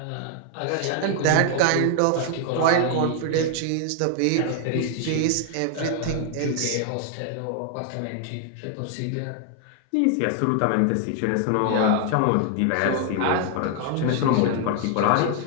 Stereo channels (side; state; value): both; different; correlation 0.00